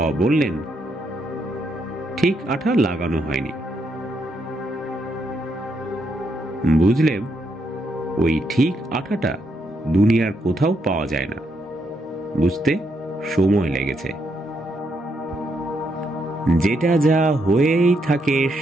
বললেন, ঠিক আঠা লাগানো হয়নি। বুঝলেন, ওই ঠিক আঠাটা দুনিয়ার কোথাও পাওয়া যায় না, বুঝতে সময় লেগেছে। যেটা যা হয়েই থাকে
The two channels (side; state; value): both; normal; correlation 0.78